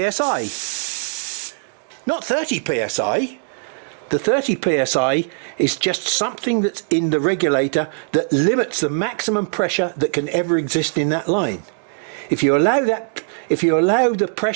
psi. not 30 psi. The 30 psi is just something that's in the regulator that limits the maximum pressure that can ever exist in that line. If you allow the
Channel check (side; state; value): left; silent; digital silence